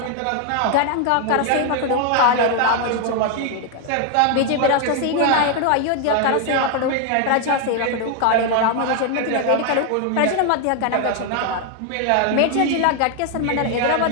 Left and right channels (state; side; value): different; both; correlation 0.01